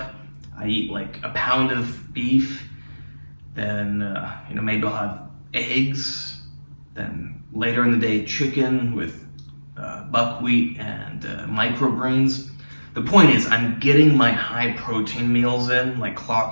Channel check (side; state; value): both; inverted; correlation -1.00